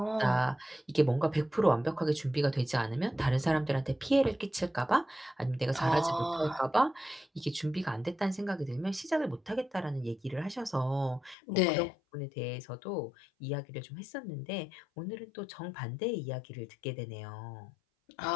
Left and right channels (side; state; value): right; drops out; at 11.4 s